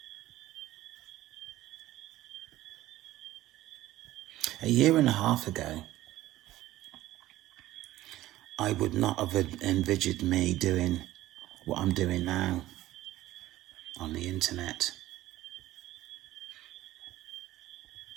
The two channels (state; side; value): quieter; left; 15.5 dB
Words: A year and a half ago, I would not have envisaged me doing what I'm doing now on the internet.